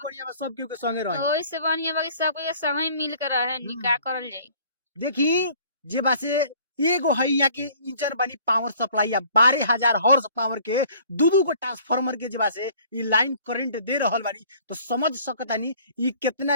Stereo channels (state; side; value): inverted; both; correlation -0.54